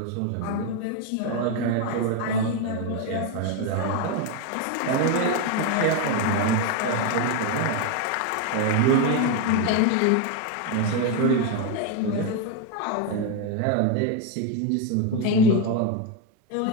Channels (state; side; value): different; both; correlation 0.02